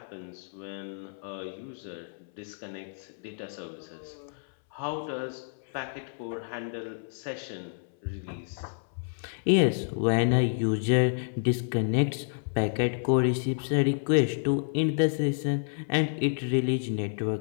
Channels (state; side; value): silent; right; 58 dB below the other